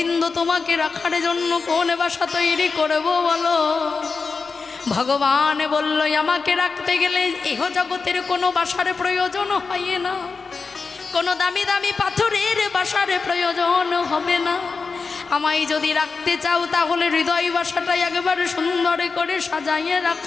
তোমাকে রাখার জন্য কোন বাসা তৈরি করব বলো? ভগবান বলল, আমাকে রাখতে গেলে ইহ জগতের কোনো বাসার প্রয়োজন হয় না, কোনো দামি দামি পাথরের বাসার প্রয়োজন হবে না। আমায় যদি রাখতে চাও তাহলে হৃদয় বাসাটাই একেবারে সুন্দর করে সাজাইয়ে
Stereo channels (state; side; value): quieter; right; 4.6 dB